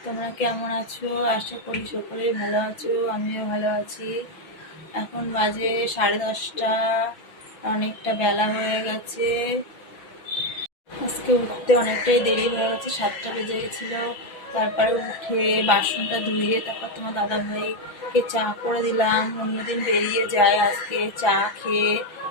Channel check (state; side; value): late; right; 6.0 ms